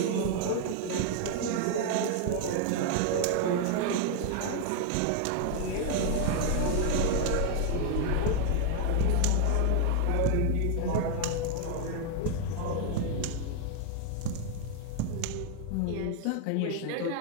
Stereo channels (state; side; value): different; both; correlation 0.01